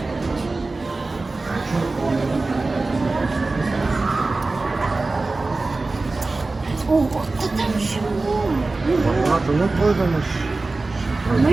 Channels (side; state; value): left; quieter; 3.4 dB